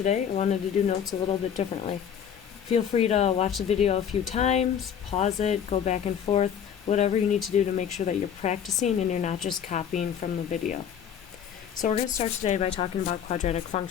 I wanted to do notes a little bit differently. Feel free to watch the video a few times, pause it, go back and forth, whatever you need to do to make sure that you're practicing and you're not just copying from the video. So we're going to start today by talking about quadratic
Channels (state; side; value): quieter; right; 8.5 dB